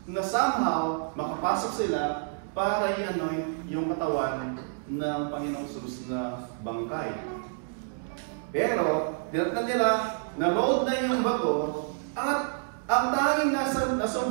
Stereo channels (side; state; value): left; silent; digital silence